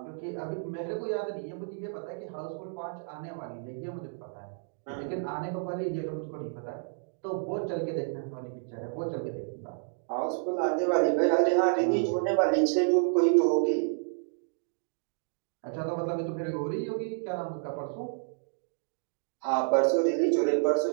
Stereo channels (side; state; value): left; silent; digital silence